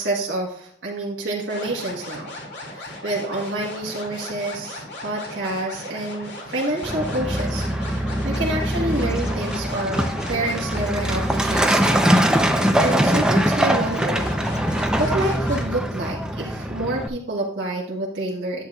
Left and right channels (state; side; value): normal; both; correlation 0.63